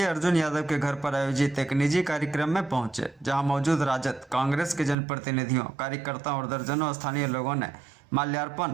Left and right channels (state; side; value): drops out; left; at 5.0 s